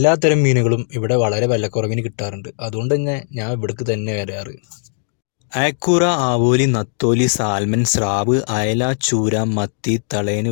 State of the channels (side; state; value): right; silent; digital silence